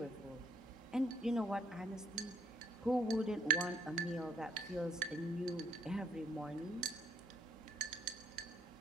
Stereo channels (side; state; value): both; normal; correlation 0.68